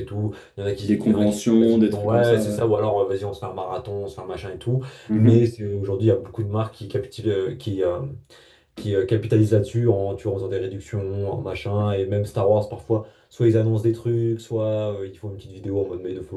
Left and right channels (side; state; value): both; identical; correlation 1.00